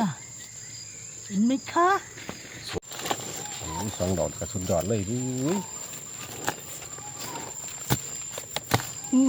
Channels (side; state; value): both; identical; correlation 1.00